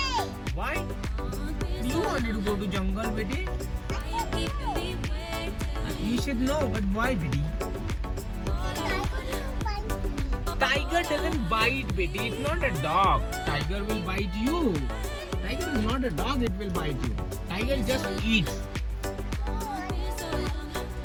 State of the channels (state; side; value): identical; both; correlation 1.00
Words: Why? You wanted to go to jungle, Betty? You should know, but why, Betty? Tiger doesn't bite, Betty. It's not a dog. Tiger will bite you. Tiger is not a dog, it will bite you. Tiger just eats.